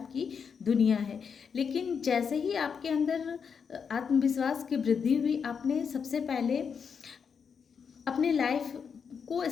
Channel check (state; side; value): quieter; right; 6.4 dB